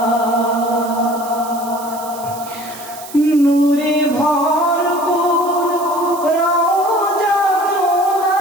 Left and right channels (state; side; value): noise; right; hiss, 16 dB below the sound